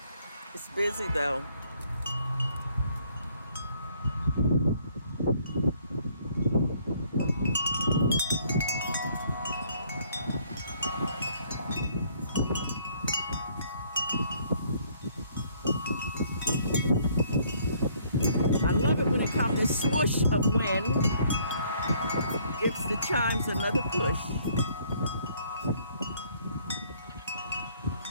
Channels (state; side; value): inverted; both; correlation -0.64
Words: It's busy though. I love it when it comes this swoosh of wind. Gives the chimes another push.